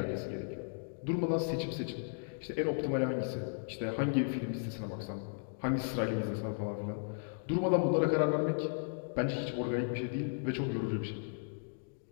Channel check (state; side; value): silent; right; digital silence